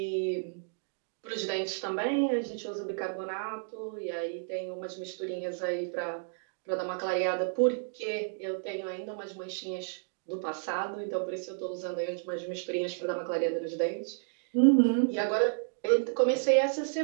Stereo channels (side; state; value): left; silent; digital silence